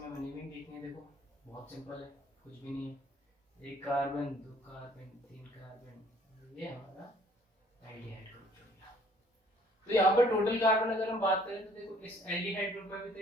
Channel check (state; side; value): normal; both; correlation 0.59